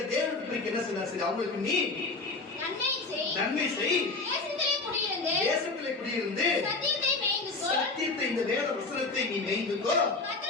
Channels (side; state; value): right; quieter; 3.6 dB